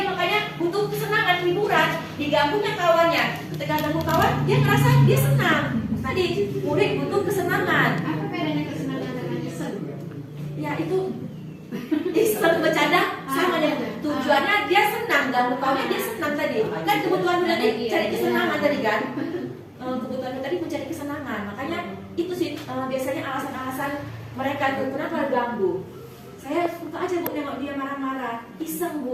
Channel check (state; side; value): identical; both; correlation 1.00